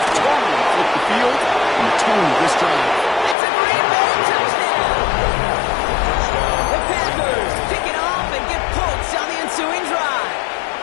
totally flipped the field and the tone of this drive. It's a Green Bay touchdown! The Packers pick it off and get points on the ensuing drive.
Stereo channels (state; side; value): drops out; right; at 3.4 s